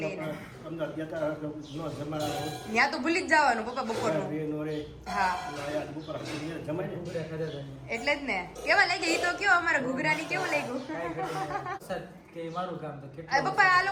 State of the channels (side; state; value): both; identical; correlation 1.00